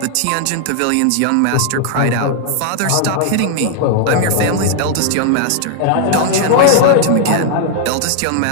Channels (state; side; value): different; both; correlation 0.00